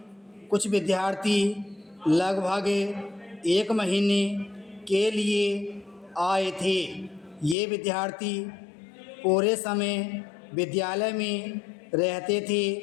कुछ विद्यार्थी लगभग 1 महीने के लिए आए थे। ये विद्यार्थी पूरे समय विद्यालय में रहते थे।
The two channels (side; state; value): right; drops out; at 7.6 s